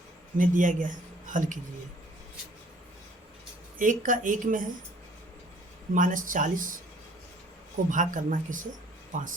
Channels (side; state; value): both; normal; correlation 0.57